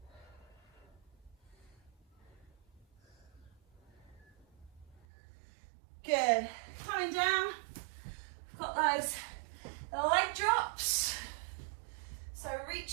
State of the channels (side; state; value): left; drops out; at 5.0 s